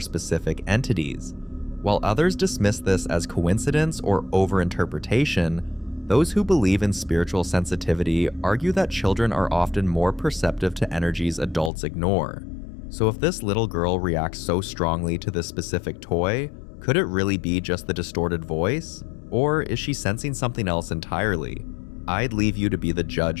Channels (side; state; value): right; drops out; at 11.7 s